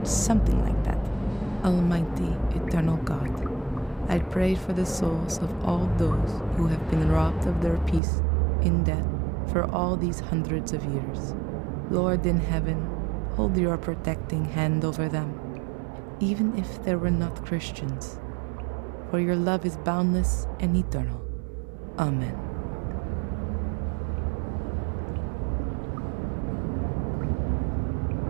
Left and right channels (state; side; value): drops out; left; at 8.0 s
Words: something like that. Almighty, eternal God, I pray for the souls of all those who have been robbed of their peace in death for all these hundreds of years. Lord in heaven, hold your protecting hand over them, even if they were not Christians, for your love is boundless and eternal. Amen.